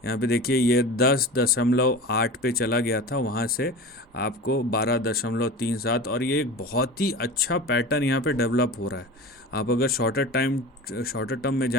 यहाँ पे देखिए ये 10.8 पे चला गया था, वहाँ से आपको 12.37, और ये एक बहुत ही अच्छा पैटर्न यहाँ पे डेवलप हो रहा है। आप अगर शॉर्टर टर्म में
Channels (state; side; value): normal; both; correlation 0.33